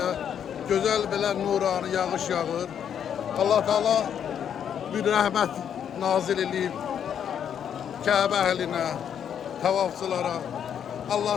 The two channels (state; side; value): quieter; right; 8.7 dB